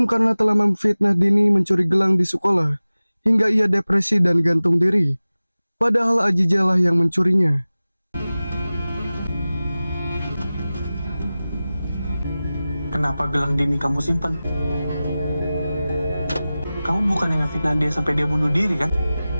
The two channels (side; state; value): both; inverted; correlation -0.97